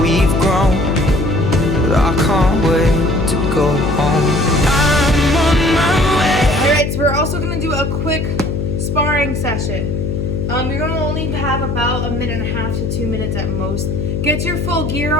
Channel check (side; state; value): left; noise; hum, 2 dB below the sound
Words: grown, but I can't wait to go home. I'm on my way. All right, so we're also gonna do a quick sparring session. You're gonna only have about 1.5 to 2 minutes at most. Get your full gear